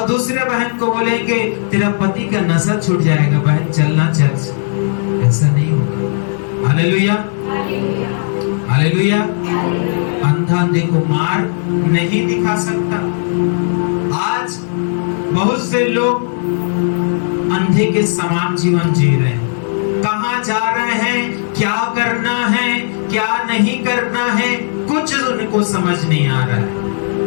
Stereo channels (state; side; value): silent; right; digital silence